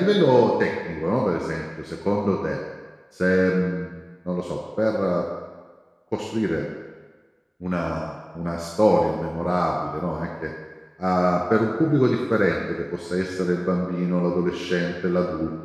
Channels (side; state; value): both; identical; correlation 1.00